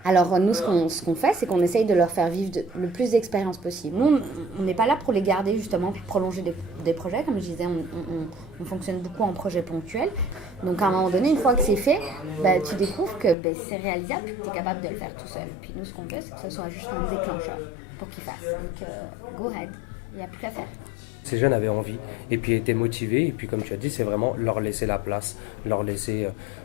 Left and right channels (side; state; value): right; drops out; at 13.4 s